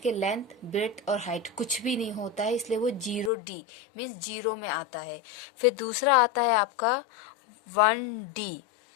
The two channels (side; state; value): right; drops out; at 3.3 s